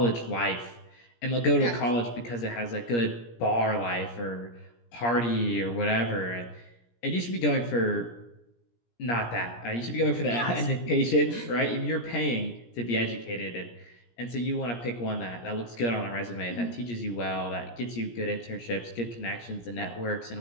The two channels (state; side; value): late; right; 17 ms